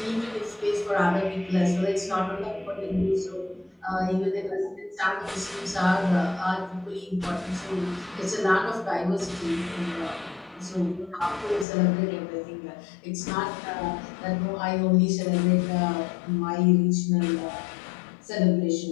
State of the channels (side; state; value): right; drops out; at 11.7 s